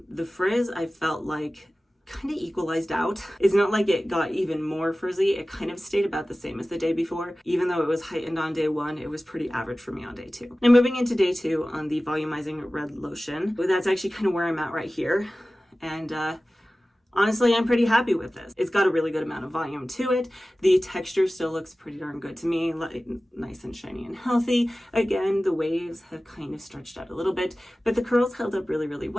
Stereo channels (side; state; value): both; normal; correlation 0.96